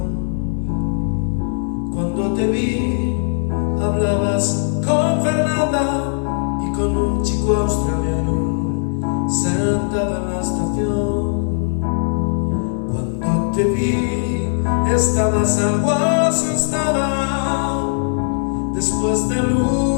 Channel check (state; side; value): silent; right; 66 dB below the other